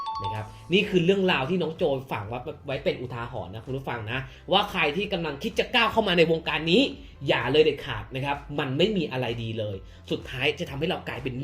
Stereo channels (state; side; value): identical; both; correlation 1.00